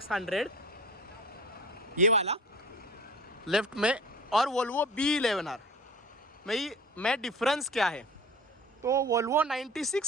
ये वाला लेफ्ट में, और वोल्वो B11R में डिफरेंस क्या है। तो वोल्वो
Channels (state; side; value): normal; both; correlation 0.38